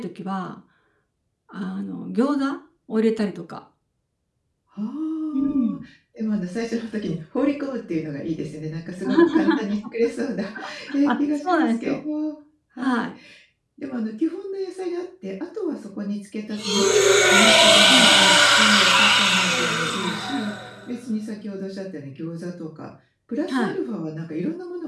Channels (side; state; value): both; identical; correlation 1.00